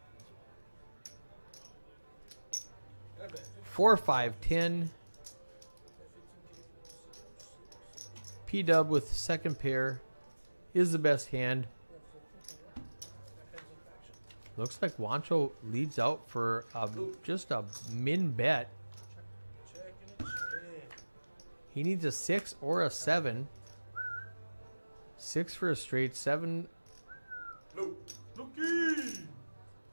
4-5-10. P-Dub with second pair is the best hand. Looks like Wancho leads out for just a min bet. He needs a 6 or a 7. 6 for a straight, 7.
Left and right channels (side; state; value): both; inverted; correlation -1.00